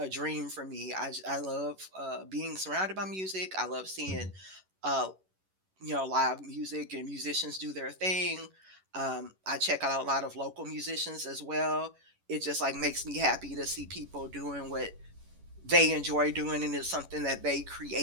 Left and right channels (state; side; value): late; left; 11 ms